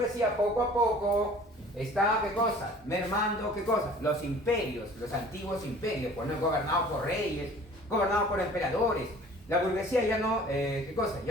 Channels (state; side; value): normal; both; correlation 0.48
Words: poco a poco está, ¿qué cosa? Mermando, ¿qué cosa? Los imperios, los antiguos imperios, pues no gobernados por reyes, gobernados por emperadores. La burguesía ya no, ¿qué cosa?